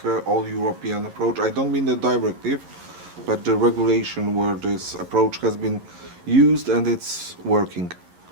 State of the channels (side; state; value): left; late; 11 ms